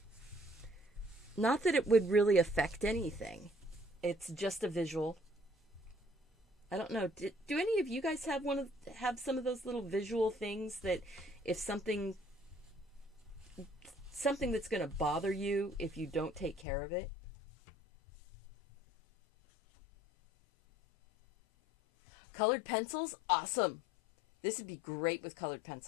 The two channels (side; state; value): right; drops out; at 16.7 s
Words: Not that it would really affect anything. It's just a visual. I don't know. Do any of you guys have some of those little visual things that if something that's going to bother you if you don't take care of it? Colored pencils? Awesome. This would be great with colored